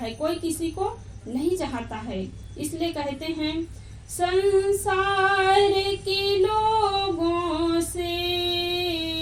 कोई किसी को नहीं चाहता है। इसलिए कहते हैं संसार के लोगों से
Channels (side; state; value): both; identical; correlation 1.00